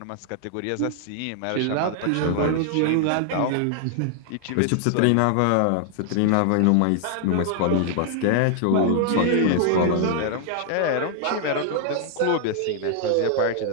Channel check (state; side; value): different; both; correlation 0.00